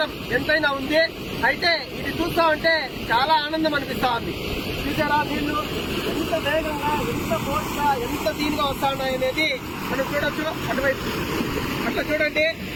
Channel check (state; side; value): identical; both; correlation 1.00